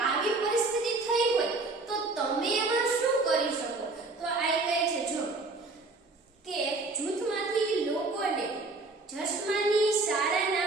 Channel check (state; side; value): quieter; left; 3.5 dB